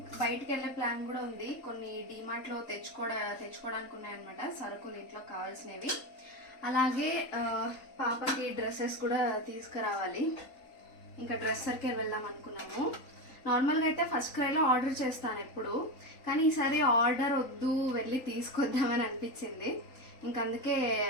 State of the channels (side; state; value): right; late; 3.8 ms